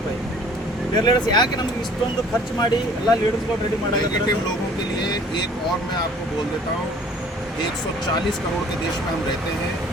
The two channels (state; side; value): normal; both; correlation 0.53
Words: ಲೀಡರ್ಸ್ ಯಾಕೆ ನಮ್ಗೆ ಇಷ್ಟೊಂದು ಖರ್ಚು ಮಾಡಿ ಎಲ್ಲ ಲೀಡರ್ಸ್ಗಳು ರೆಡಿ ಮಾಡೋದು? नेगेटिव लोगों के लिए एक और मैं आपको बोल देता हूँ, 140 करोड़ के देश में हम रहते हैं